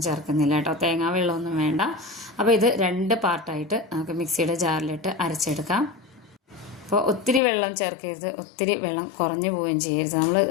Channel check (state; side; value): drops out; right; at 7.4 s